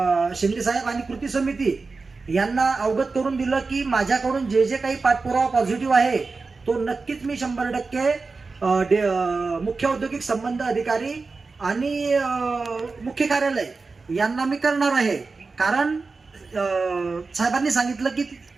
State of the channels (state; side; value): quieter; left; 4.1 dB